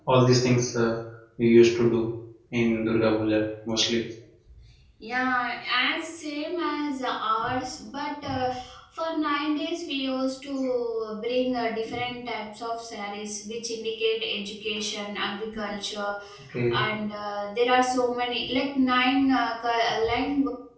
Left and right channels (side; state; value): both; identical; correlation 1.00